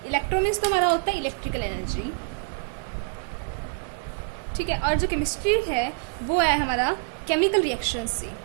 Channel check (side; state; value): left; silent; 61 dB below the other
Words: इलेक्ट्रो मीन्स तो हमारा होता है इलेक्ट्रिकल एनर्जी, ठीक है। और जो केमिस्ट्री है वो है हमारा केमिकल रिएक्शन